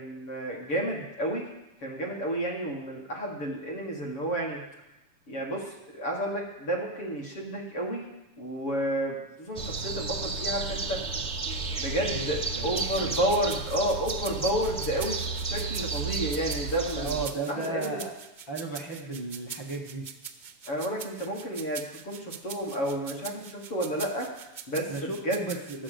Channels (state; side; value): late; right; 7.0 ms